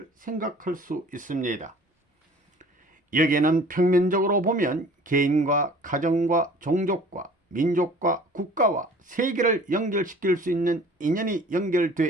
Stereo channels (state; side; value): normal; both; correlation 0.48